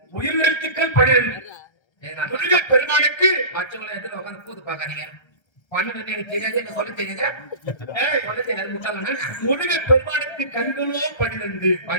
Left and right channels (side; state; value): right; late; 1.3 ms